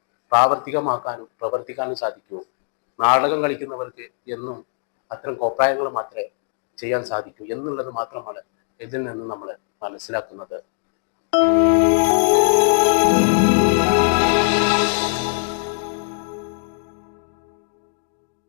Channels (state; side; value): silent; right; digital silence